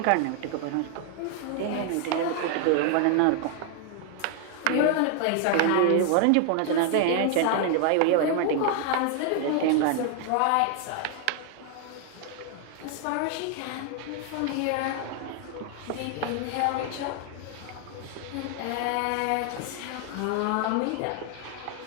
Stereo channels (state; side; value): different; both; correlation 0.00